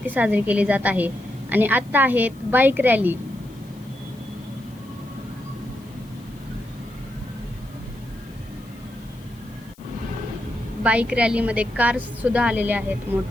साजरी केली जात आहे आणि आता आहे बाईक रॅली। बाईक रॅलीमध्ये कार्स सुद्धा आलेले आहेत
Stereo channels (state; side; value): noise; left; hiss, 28 dB below the sound